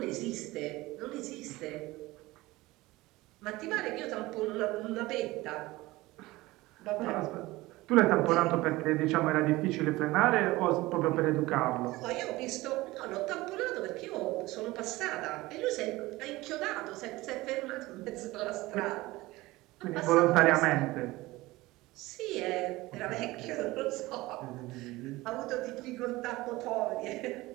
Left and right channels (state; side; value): quieter; left; 19.6 dB